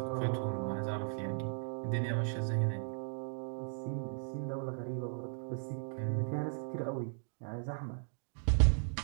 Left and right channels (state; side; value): silent; left; digital silence